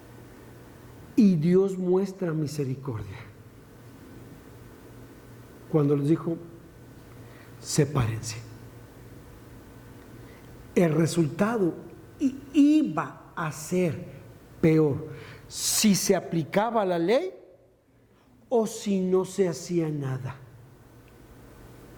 Y Dios muestra misericordia cuando les dijo: sepárense. El resultado iba a ser peor si se aplicaba la ley o si no se hacía nada.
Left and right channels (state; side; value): identical; both; correlation 1.00